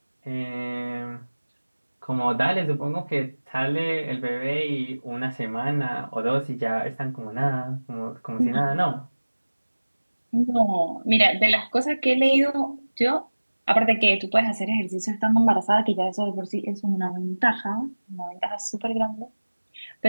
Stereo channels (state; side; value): inverted; both; correlation -1.00